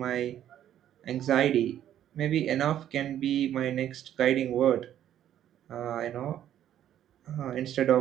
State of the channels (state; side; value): quieter; left; 11.1 dB